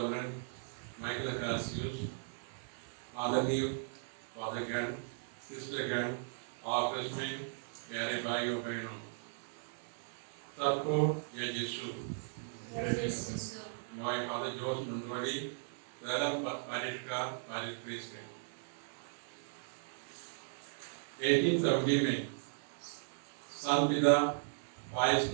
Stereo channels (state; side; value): silent; left; 53 dB below the other